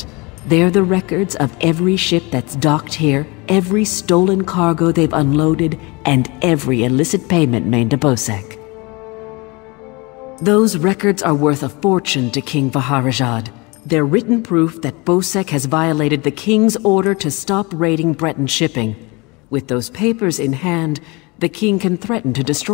They're the records of every ship that's docked here, every stolen cargo they've unloaded, and every illicit payment made to Bosek. Those records are worth a fortune to King Vaharajad. They're written proof that Bosek has violated the King's order to stop raiding Breton shipping. With those papers in hand, the King can threaten to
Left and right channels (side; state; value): right; quieter; 26.3 dB